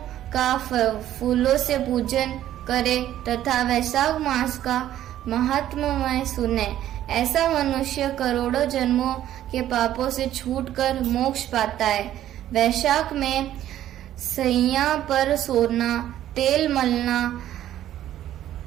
का फूलों से पूजन करे तथा वैशाख मास का महात्म्य सुने। ऐसा मनुष्य करोड़ों जन्मों के पापों से छूटकर मोक्ष पाता है। वैशाख में सैया पर सोना, तेल मलना,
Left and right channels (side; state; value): left; quieter; 12.3 dB